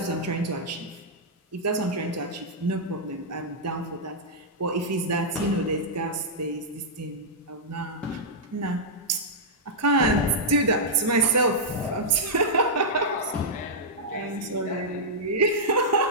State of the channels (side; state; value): both; normal; correlation -0.09